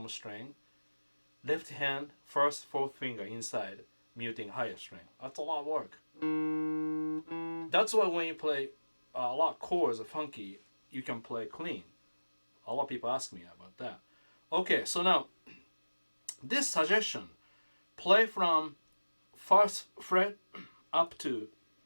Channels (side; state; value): both; inverted; correlation -1.00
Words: string. Left hand, 1st, 4th finger inside, muting higher string. That's a lot of work. That's why when you play a lot of chords, funky, you can play clean. A lot of people ask me about that. Okay, so now, this suggestion, play from 1st fret up to